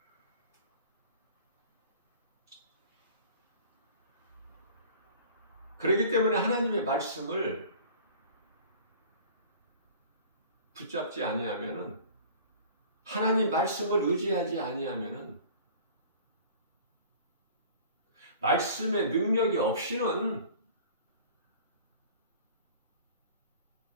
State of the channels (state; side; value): inverted; both; correlation -0.45